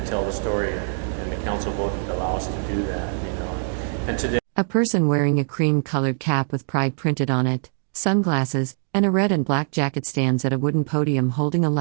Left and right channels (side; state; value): left; silent; digital silence